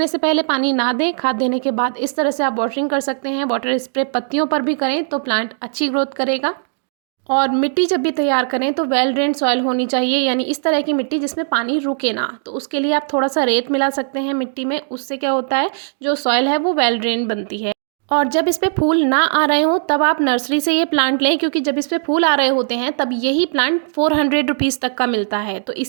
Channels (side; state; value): left; silent; digital silence